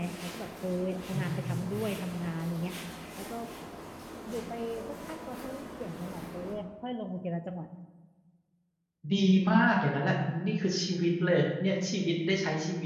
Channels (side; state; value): both; identical; correlation 1.00